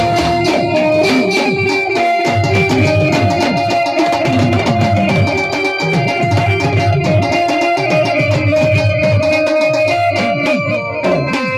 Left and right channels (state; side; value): identical; both; correlation 1.00